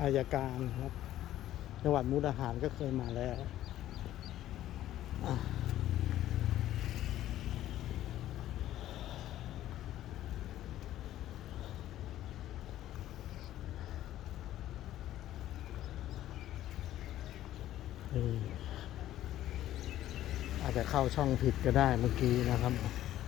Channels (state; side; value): quieter; right; 13.3 dB